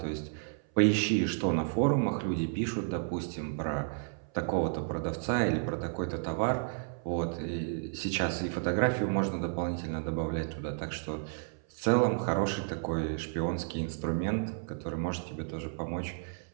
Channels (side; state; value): left; silent; 56 dB below the other